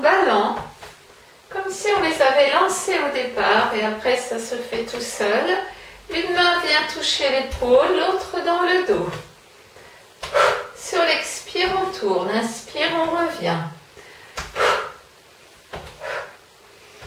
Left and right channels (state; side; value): identical; both; correlation 1.00